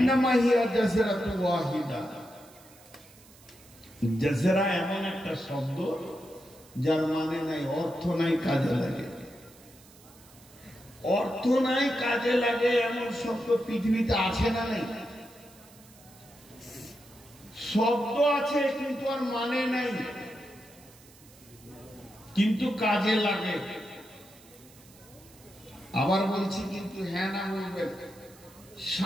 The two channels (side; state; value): right; noise; hiss, 24 dB below the sound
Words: হিয়া জাসরাতুন ওয়াহিদা। জাসরা এমন একটা শব্দ যার মানে নাই, অর্থ নাই, কাজে লাগে। অর্থ নাই, কাজে লাগে এমন শব্দ পৃথিবীতে আছে না নেই? শব্দ আছে কিন্তু আর মানে নাই, কিন্তু কাজে লাগে। আবার বলছি কিন্তু হ্যাঁ না বলবেন।